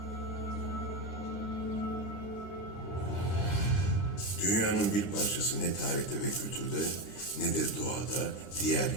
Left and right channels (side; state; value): right; late; 9.9 ms